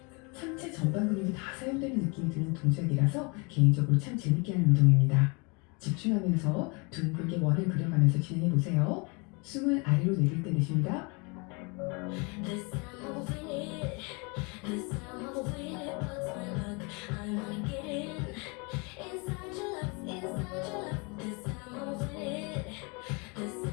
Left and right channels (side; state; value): right; quieter; 30.7 dB